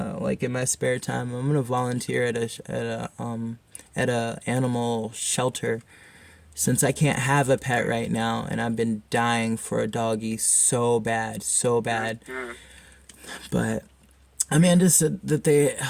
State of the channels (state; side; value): identical; both; correlation 1.00